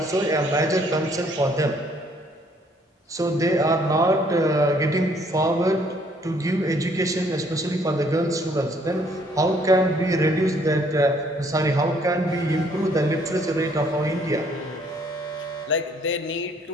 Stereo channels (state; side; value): normal; both; correlation 0.64